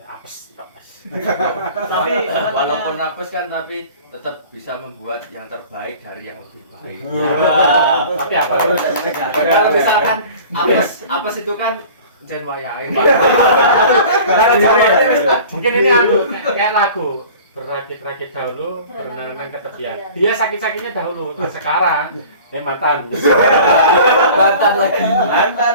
apes. Tapi walaupun apes kan tapi tetap bisa membuat yang terbaik dari yang lebih baik. Tapi apa? Kalau misalkan apes itu kan jen wayahe. Mungkin ini anu kayak lagu berakit-rakit dahulu, berenang-renang ke tepian. Dia sakit-sakitnya dahulu, nah, sekarang mantan. Mantan lagi.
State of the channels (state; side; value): inverted; both; correlation -0.43